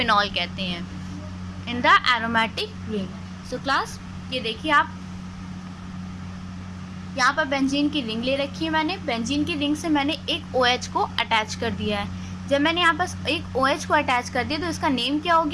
कहते हैं in the aromatic ring. So class ये देखिए, आप यहाँ पर बेंजीन की रिंग ले रखी है। मैंने बेंजीन की रिंग से मैंने एक OH को अटैच कर दिया है। जब मैंने यहाँ पर एक OH को अटैच कर दिया तो इसका नेम क्या हो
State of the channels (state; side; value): identical; both; correlation 1.00